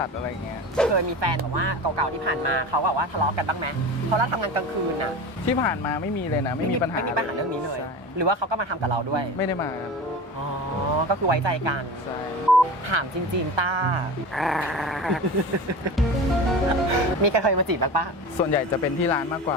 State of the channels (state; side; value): normal; both; correlation 0.30